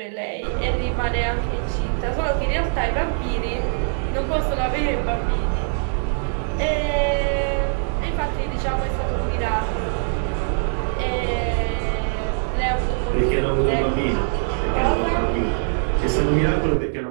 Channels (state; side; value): silent; left; digital silence